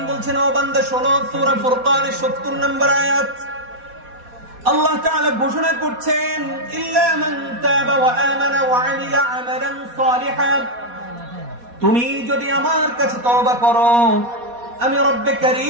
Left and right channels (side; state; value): left; late; 4.2 ms